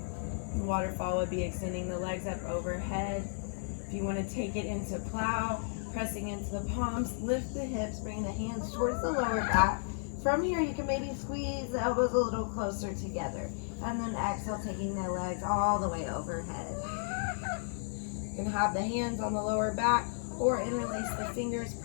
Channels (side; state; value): right; silent; 55 dB below the other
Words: Waterfall would be extending the legs up overhead. If you want to take it into plow, pressing into the palms, lift the hips, bring the hands towards the lower back. From here, you can maybe squeeze the elbows a little closer together. And then exhale, taking the legs all the way overhead. You can have the hands on the lower back or interlace the fingers,